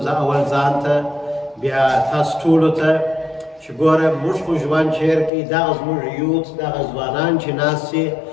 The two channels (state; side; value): drops out; right; at 5.3 s